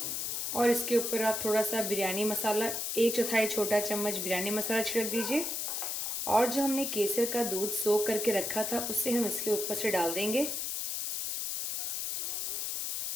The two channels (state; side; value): noise; left; hiss, 2 dB below the sound